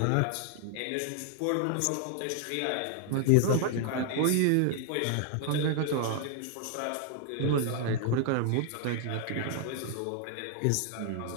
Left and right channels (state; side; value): different; both; correlation 0.00